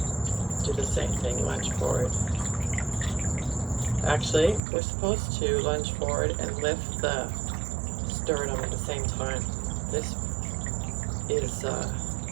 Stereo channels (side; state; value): left; drops out; at 4.6 s